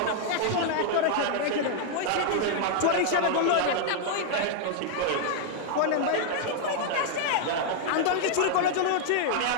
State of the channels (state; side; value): different; both; correlation -0.01